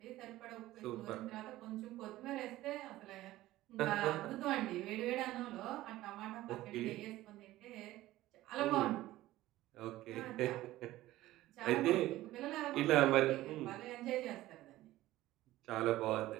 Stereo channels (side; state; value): left; quieter; 16.1 dB